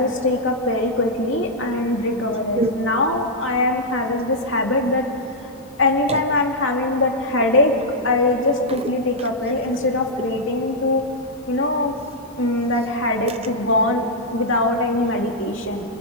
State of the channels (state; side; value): noise; left; hiss, 30 dB below the sound